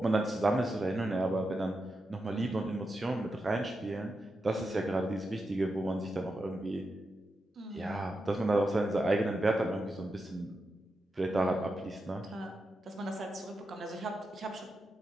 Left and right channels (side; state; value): both; normal; correlation 0.88